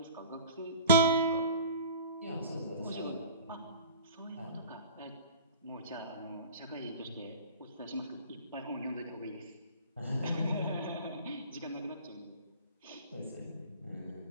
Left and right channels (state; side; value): inverted; both; correlation -0.41